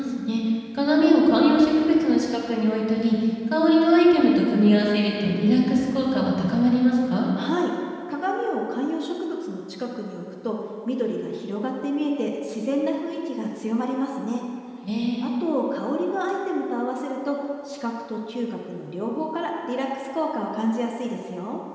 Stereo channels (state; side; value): identical; both; correlation 1.00